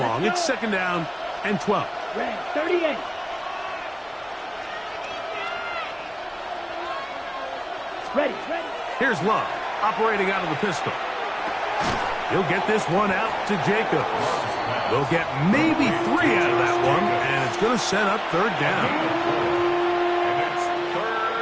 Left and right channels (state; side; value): identical; both; correlation 1.00